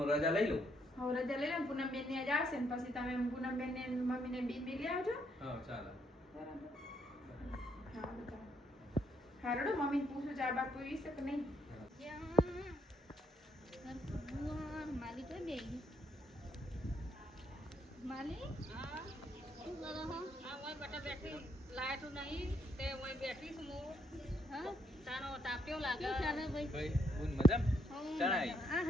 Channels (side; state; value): both; normal; correlation 0.73